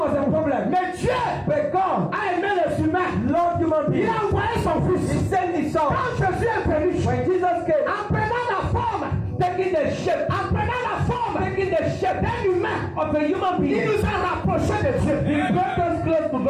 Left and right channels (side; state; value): both; identical; correlation 1.00